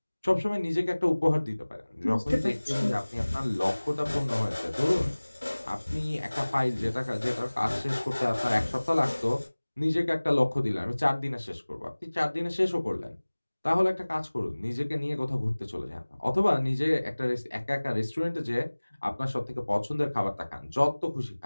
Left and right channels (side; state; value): both; inverted; correlation -1.00